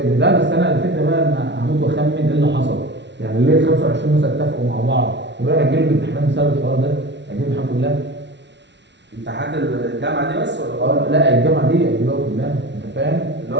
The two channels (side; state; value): left; late; 0.51 ms